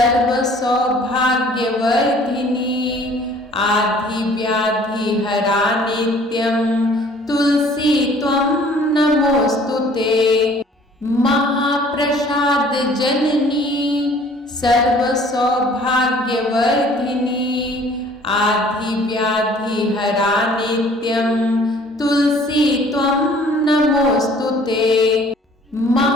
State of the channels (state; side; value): normal; both; correlation 0.54